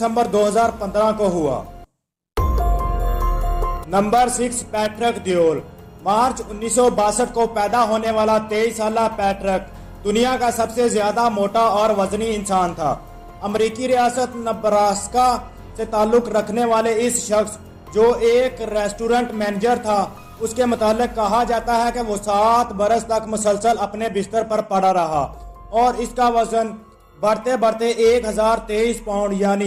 2015 کو ہوا۔ نمبر 6، پیٹرک دیول۔ مارچ 1962 کو پیدا ہونے والا 23 سالہ پیٹرک دنیا کا سب سے زیادہ موٹا اور وزنی انسان تھا۔ امریکی ریاست نبراسکا سے تعلق رکھنے والے اس شخص جو ایک ریسٹورنٹ مینیجر تھا، اس کے متعلق کہا جاتا ہے کہ وہ 7 برس تک مسلسل اپنے بستر پر پڑا رہا اور اس کا وزن بڑھتے بڑھتے 1023 پاؤنڈ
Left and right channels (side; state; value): both; identical; correlation 1.00